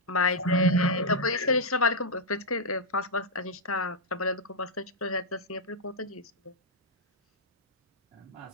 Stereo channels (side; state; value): both; normal; correlation -0.05